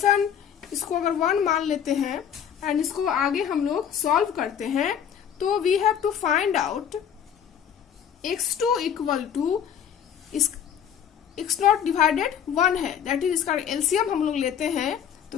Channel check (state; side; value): quieter; right; 8.7 dB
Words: इसको अगर 1 मान लेते हैं एंड इसको आगे हम लोग सॉल्व करते हैं तो we have to find out x2 equal to x0 divided 1 है. दैट इज इसका एलसीएम हम लोग लेते हैं